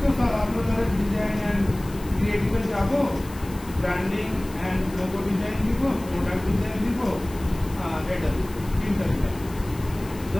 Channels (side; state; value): left; noise; hiss, 19 dB below the sound